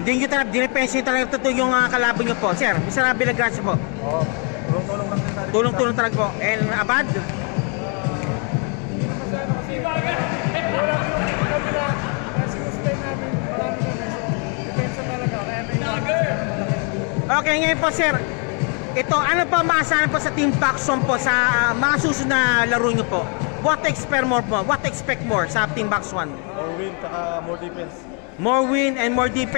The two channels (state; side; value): quieter; right; 37.5 dB